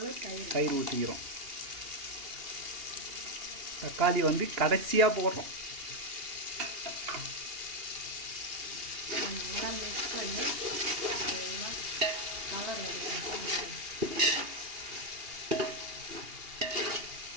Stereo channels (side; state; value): left; late; 2.8 ms